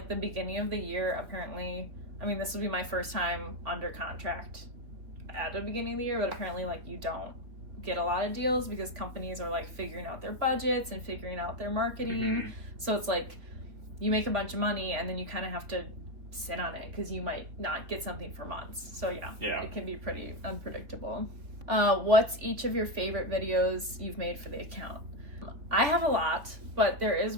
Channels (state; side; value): late; left; 3.4 ms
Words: the beginning of the year, apparently, I mean, this will be my first time under contract at the beginning of the year, but apparently like you don't get a lot of deals because companies are like figuring out their budgets and figuring out their marketing. So it's like you make a bunch of money and then you kind of have to sit on it because you might not get something for months. So yeah, it can be pretty unpredictable. What's each of your favorite videos you've made for the account? I have a lot, but there is